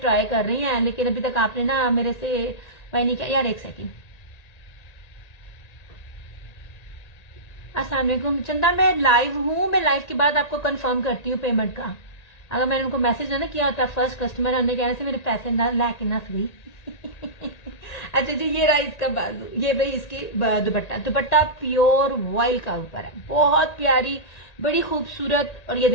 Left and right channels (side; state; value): right; late; 1.9 ms